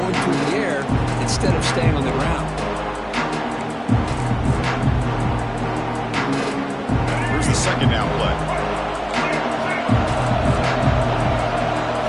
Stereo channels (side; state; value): both; identical; correlation 1.00